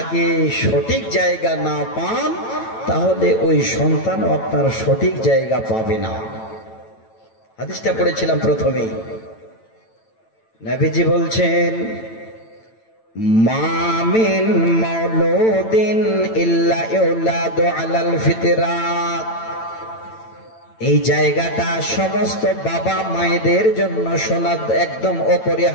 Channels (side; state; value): right; late; 9.0 ms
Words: সঠিক জায়গা না পান তাহলে ওই সন্তানও আপনার সঠিক জায়গা পাবে না। হাদিসটা পড়েছিলাম প্রথমেই। নবীজি বলছেন মা মিন মাউলুদিন ইল্লা ইউলাদু আলাল ফিতরাত। এই জায়গাটা সমস্ত বাবা মায়েদের জন্য শোনা একদম